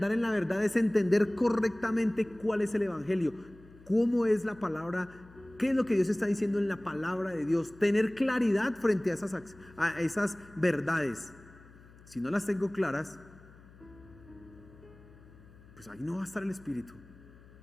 en la verdad es entender correctamente cuál es el evangelio, cómo es la palabra, qué es lo que Dios está diciendo en la palabra de Dios, tener claridad frente a esas verdades. Si no las tengo claras, pues ahí no va a estar el Espíritu,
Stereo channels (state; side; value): noise; left; hum, 23 dB below the sound